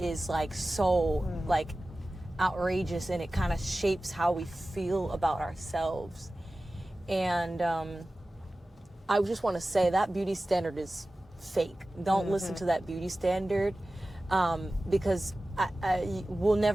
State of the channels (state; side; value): normal; both; correlation 0.96